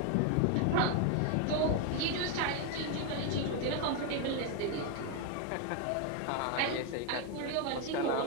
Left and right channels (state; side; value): different; both; correlation 0.01